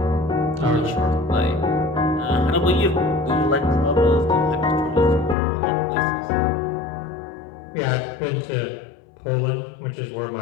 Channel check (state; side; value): drops out; right; at 5.4 s